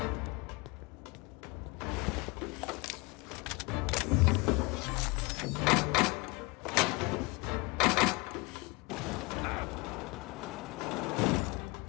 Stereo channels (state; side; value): quieter; right; 26.7 dB